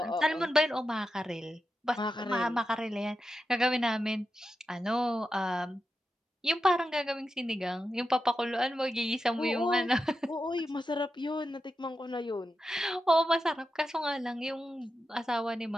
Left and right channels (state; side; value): normal; both; correlation 0.89